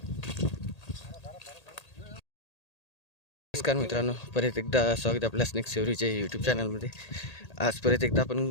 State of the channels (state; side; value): late; right; 1.8 ms